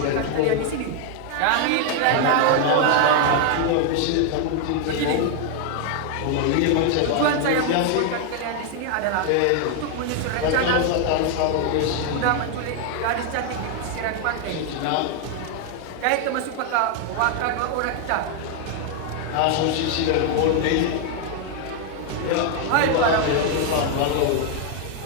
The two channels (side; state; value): both; different; correlation 0.00